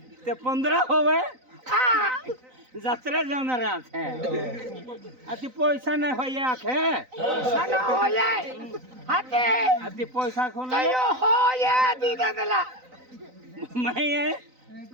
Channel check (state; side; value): late; left; 3.9 ms